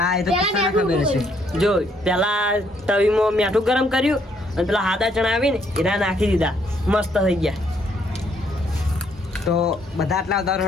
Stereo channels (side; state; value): both; normal; correlation 0.69